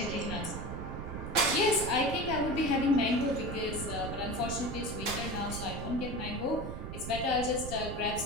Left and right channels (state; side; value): noise; right; rumble, 7 dB below the sound